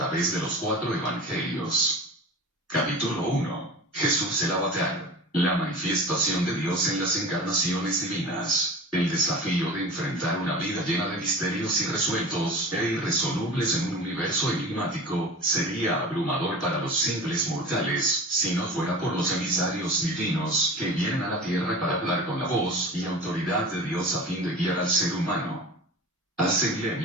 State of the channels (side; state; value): both; normal; correlation 0.34